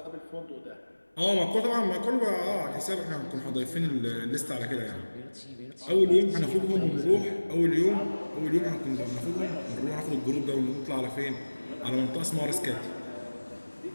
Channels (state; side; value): inverted; both; correlation -1.00